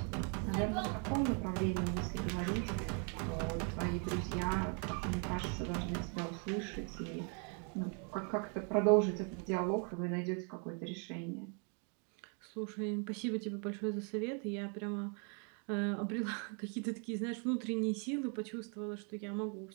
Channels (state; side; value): quieter; left; 39.5 dB